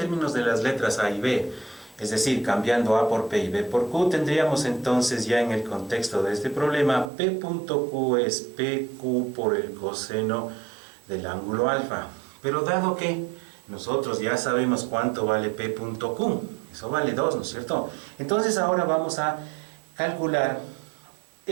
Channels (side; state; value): left; drops out; at 7.1 s